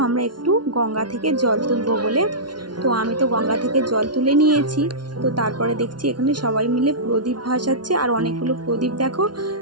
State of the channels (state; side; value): late; left; 0.70 ms